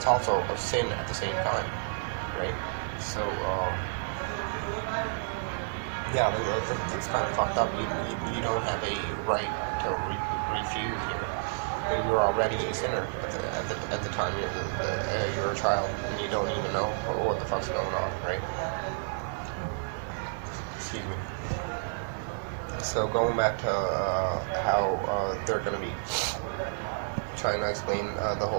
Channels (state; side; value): silent; left; digital silence